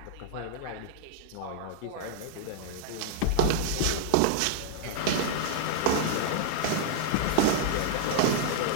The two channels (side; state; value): both; different; correlation -0.01